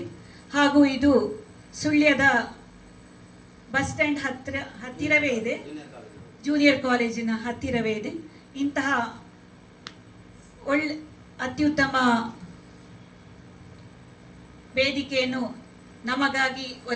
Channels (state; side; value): identical; both; correlation 1.00